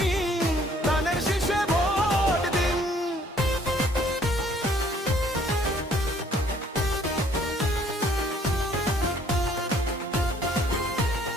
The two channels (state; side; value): normal; both; correlation 0.61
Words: ধানের শীষে ভোট দিন।